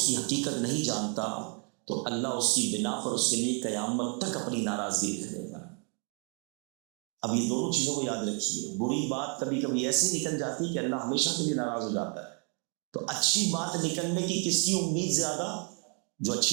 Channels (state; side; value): quieter; left; 38.6 dB